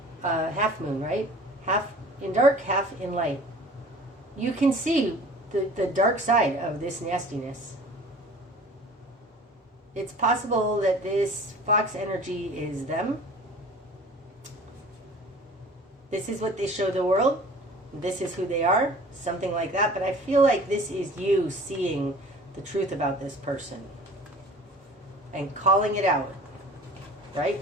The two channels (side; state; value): both; normal; correlation 0.45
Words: half moon, right? Half in dark, half in light. You can see the dark side of this nastiness. It's possible that this fox energy is them. This is what they show the world. This is who they are, something like that. But I feel like this is you seeing the truth about this person and calling it out, right?